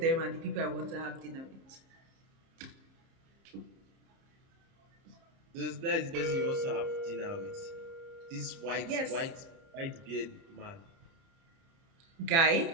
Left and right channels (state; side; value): late; left; 30 ms